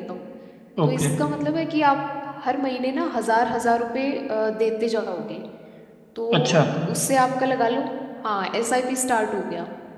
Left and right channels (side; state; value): both; identical; correlation 1.00